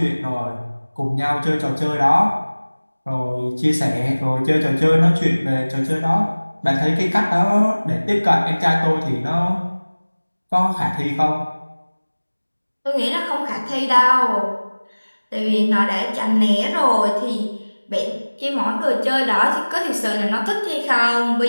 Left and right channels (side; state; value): both; inverted; correlation -1.00